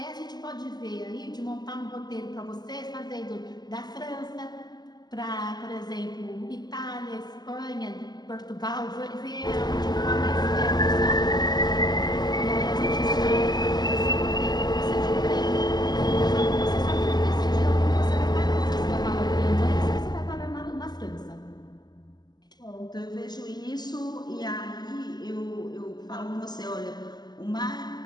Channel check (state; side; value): late; right; 0.20 ms